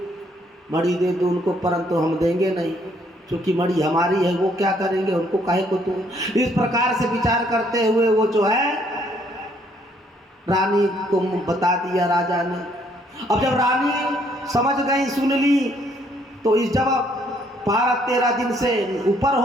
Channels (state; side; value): normal; both; correlation 0.67